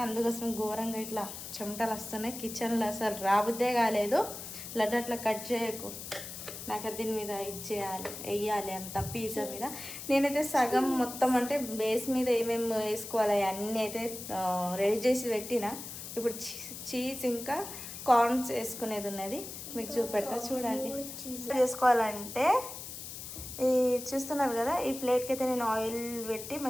అందుకోసం ఘోరంగా ఇట్లా చెమటలు వస్తున్నాయి. కిచెన్లో అసలు రాబుద్దే కాలేదు. లడ్డు అట్లా కట్ చేయకు, నాకు దీని మీద ఇచ్చేయాలి, వేయాలి అంత పిజ్జా మీద. నేనైతే సగం మొత్తం అంటే బేస్ మీద ఏమేమి వేసుకోవాలి అన్నీ అయితే రెడీ చేసి పెట్టిన. ఇప్పుడు చీజ్ ఇంకా కార్న్స్ వేసుకునేది ఉన్నది, మీకు చూపెడతా చూడండి. చేసుకోవాలంటే ఈ చూస్తున్నారు కదా, ఈ ప్లేట్కి అయితే నేను ఆయిల్ పెట్టి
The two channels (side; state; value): left; noise; hiss, 10 dB below the sound